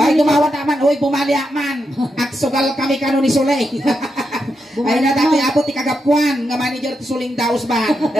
tumawat naman. Uy, bumaliak man. Aksugal kami kano ni Sulay. Ay, na dati abot ti kagapuan. Nga manager ti Suling Daos ba?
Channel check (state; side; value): normal; both; correlation 0.85